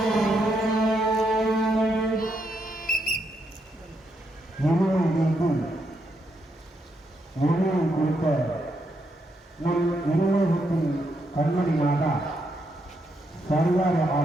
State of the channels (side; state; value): both; normal; correlation 0.79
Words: கண்மணி மாதா சர்வார